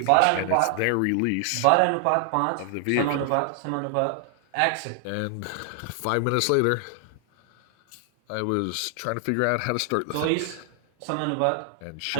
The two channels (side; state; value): both; different; correlation 0.00